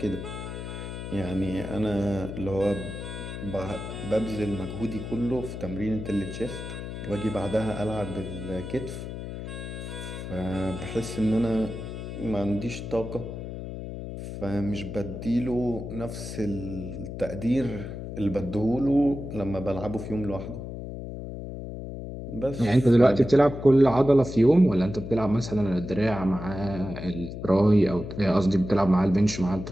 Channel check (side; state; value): left; noise; hum, 8 dB below the sound